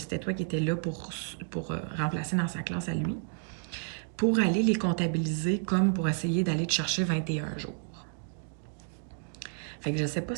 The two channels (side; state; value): left; silent; 57 dB below the other